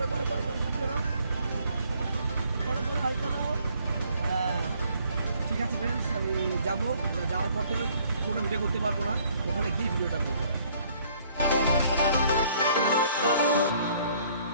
করো করো করো করো করো হাই করো। হ্যাঁ ঠিক আছে ফ্রেন্ডস, আমি যাবো। যাওয়ার পর থেকে কোনো ভিডিও করতে পারবো না, ওখানে গিয়ে ভিডিওটা করবো।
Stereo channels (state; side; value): inverted; both; correlation -0.62